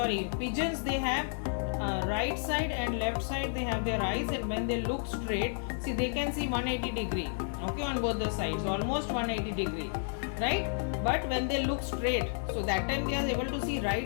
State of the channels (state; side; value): silent; right; digital silence